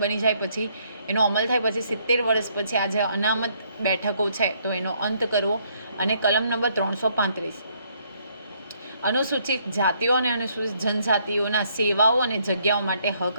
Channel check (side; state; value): both; inverted; correlation -0.69